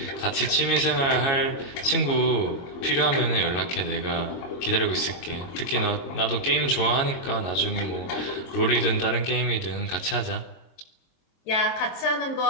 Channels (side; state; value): right; late; 22 ms